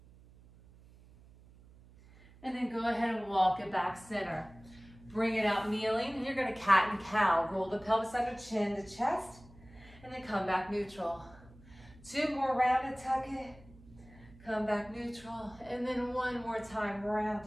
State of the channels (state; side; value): noise; right; hum, 23 dB below the sound